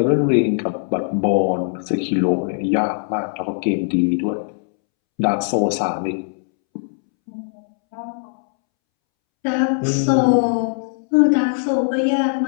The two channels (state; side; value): silent; right; 66 dB below the other